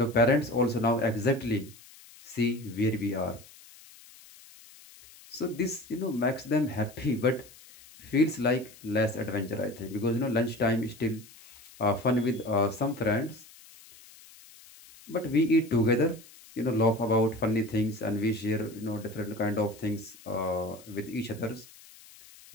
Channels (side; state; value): left; noise; hiss, 22 dB below the sound